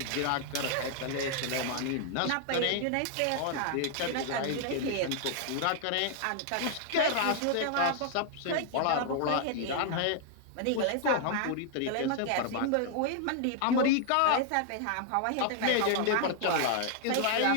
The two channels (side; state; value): both; different; correlation 0.00